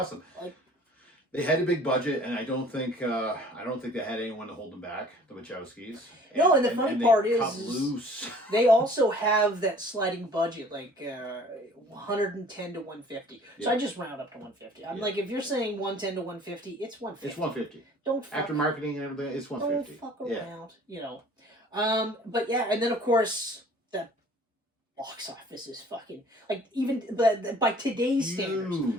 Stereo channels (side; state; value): both; normal; correlation 0.51